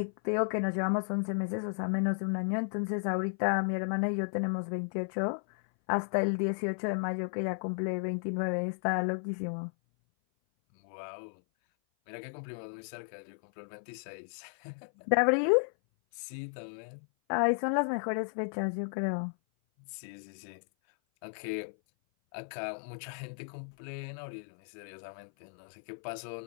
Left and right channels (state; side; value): silent; right; 55 dB below the other